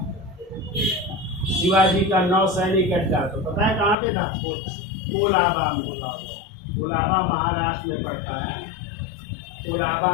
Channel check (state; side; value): drops out; right; at 4.0 s